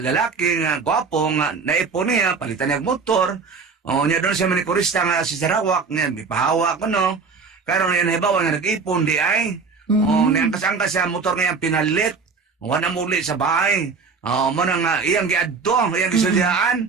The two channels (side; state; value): left; quieter; 5.0 dB